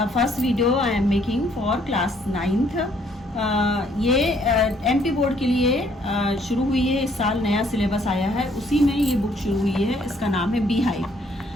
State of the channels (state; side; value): normal; both; correlation 0.66